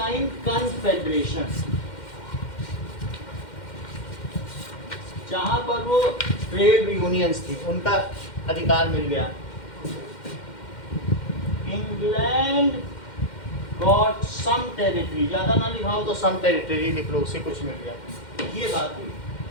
कन्फेडरेशन, जहां पर वो ट्रेड यूनियंस थी उनका अधिकार मिल गया। इंग्लैंड गॉट सम टेरिटरी, ज्यादा ना लिखाओ तो सम टेरिटरी लिख लो, उससे कुछ मिल गया। ये बात हुई,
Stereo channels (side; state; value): right; late; 2.1 ms